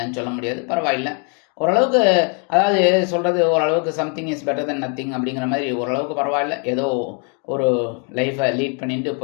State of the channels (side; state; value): right; quieter; 39.2 dB